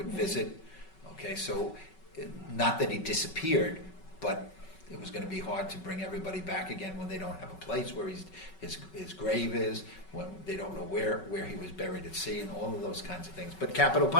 visit. Okay, so not that he disappeared, but it was going to be hard to bring everybody back again when they don't have a place where his grave is, when they don't know where he was buried at sea, and all of those kinds of things. But capital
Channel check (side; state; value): right; late; 5.3 ms